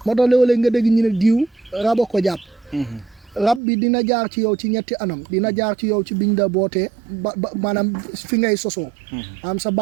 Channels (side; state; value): left; drops out; at 3.6 s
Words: moo tax léeg-léeg nga dégg ñu ne diw raba ko jàpp rab bi dina jaar ci yow ci ñetti anam dina jaar ci yow ci biñ la bootee ba maanaam fi ngay sosoo am sa